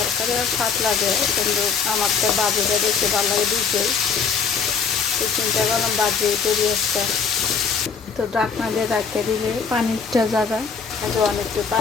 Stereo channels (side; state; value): right; quieter; 5.9 dB